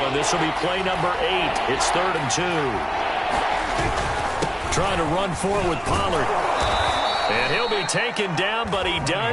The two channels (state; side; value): identical; both; correlation 1.00